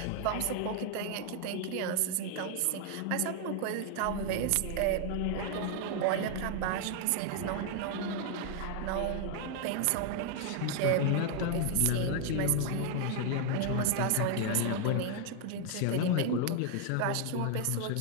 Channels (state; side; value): different; both; correlation 0.00